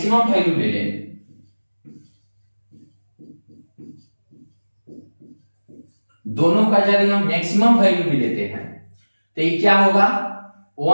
वैल्यू ले लें, दोनों का यदि हम मैक्सिमम वैल्यू भी लेते हैं तो ये क्या होगा,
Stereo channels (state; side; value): inverted; both; correlation -1.00